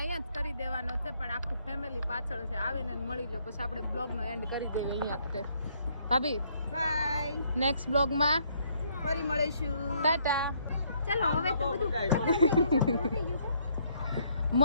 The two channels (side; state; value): both; inverted; correlation -0.69